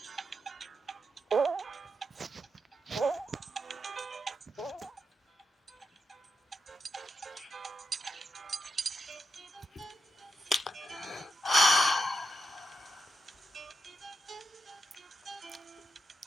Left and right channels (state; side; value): normal; both; correlation 0.86